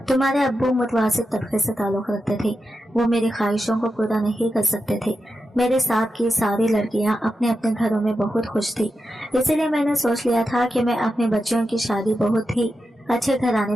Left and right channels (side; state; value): both; normal; correlation 0.89